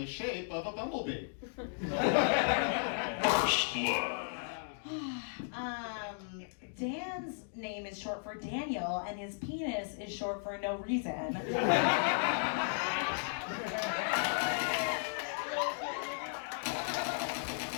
shape of a bumblebee. First blood. Dan's name is short for Daniel, and his penis is short for no reason.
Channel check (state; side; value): silent; right; digital silence